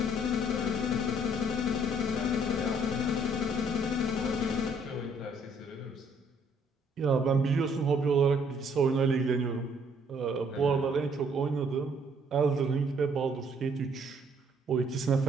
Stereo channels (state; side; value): normal; both; correlation 0.64